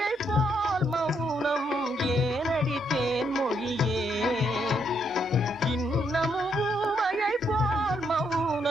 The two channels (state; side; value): normal; both; correlation 0.75